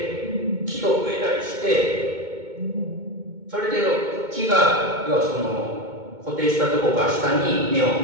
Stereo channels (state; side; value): late; left; 2.2 ms